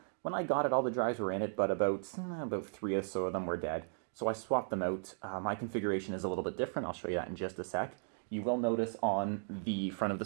when I got it, all the drives were in it, but about 3 or so of them were dead. So I swapped them out. My configuration is a little bit different. I'll show you that in just a sec. You will notice on the front of the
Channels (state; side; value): silent; left; digital silence